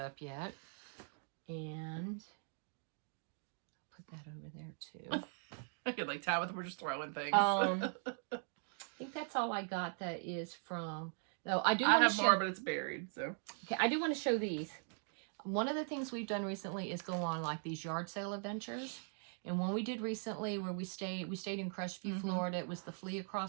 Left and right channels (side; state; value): left; silent; 51 dB below the other